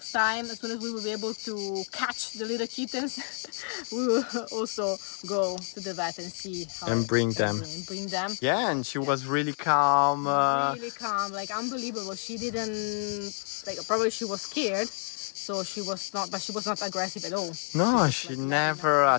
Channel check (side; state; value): right; silent; 59 dB below the other